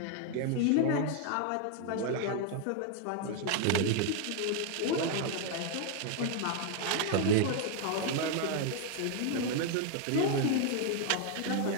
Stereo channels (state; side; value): different; both; correlation 0.00